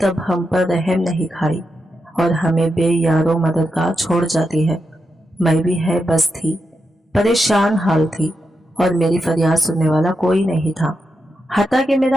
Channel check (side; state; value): both; normal; correlation 0.86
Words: तब हम पर रहम नहीं खाई और हमें बेयारो मददगार छोड़ जाती है। मैं भी है बस थी, परेशान हाल थी और मेरी फरियाद सुनने वाला कोई नहीं था। हत्ता कि